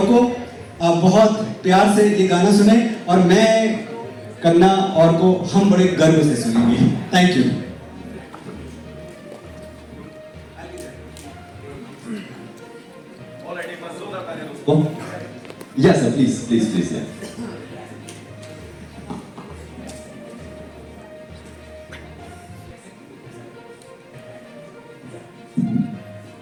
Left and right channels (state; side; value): identical; both; correlation 1.00